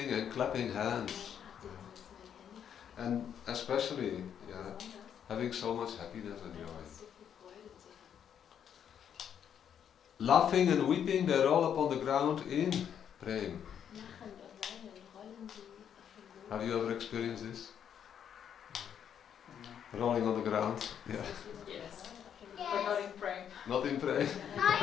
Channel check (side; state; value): right; quieter; 8.7 dB